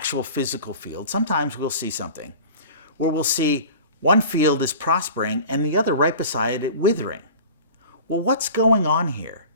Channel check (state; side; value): inverted; both; correlation -0.39